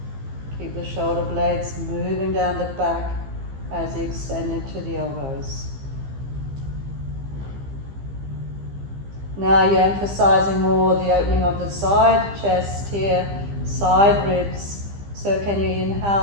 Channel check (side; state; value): left; late; 15 ms